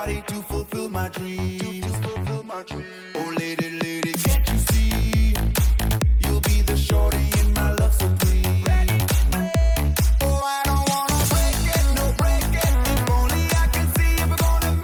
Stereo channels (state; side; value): identical; both; correlation 1.00